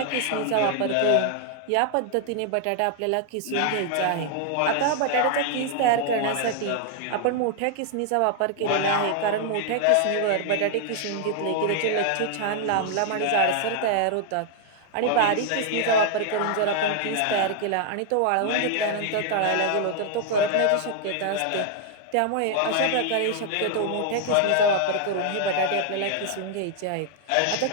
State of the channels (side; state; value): both; different; correlation 0.00